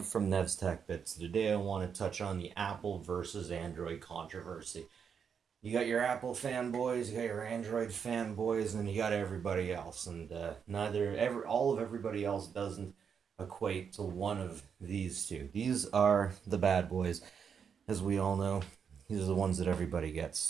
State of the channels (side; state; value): left; quieter; 6.9 dB